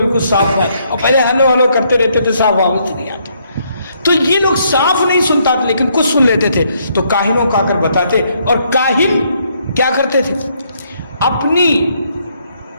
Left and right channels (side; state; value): both; inverted; correlation -0.71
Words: صاف ہے. اور پہلے ہلو ہلو کرتے رہتے تھے، صاف آواز نہیں آتا. تو یہ لوگ صاف نہیں سنتا تھا لیکن کچھ سن لیتے تھے. تو کاہنوں کا کر بتاتے، اور کاہن کیا کرتے تھے،